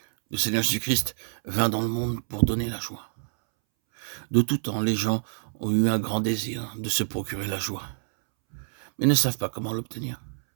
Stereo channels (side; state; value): left; silent; 60 dB below the other